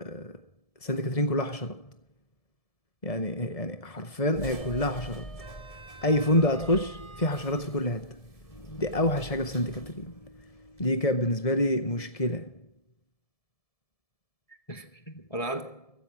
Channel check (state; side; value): late; right; 1.7 ms